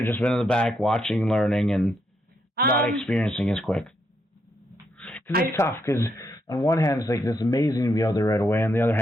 have just been in the back watching, learning, and not experiencing as quick? Because it's tough, because on one hand, it's like, it's amazing to be out there right away. On the other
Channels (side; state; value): both; normal; correlation 0.78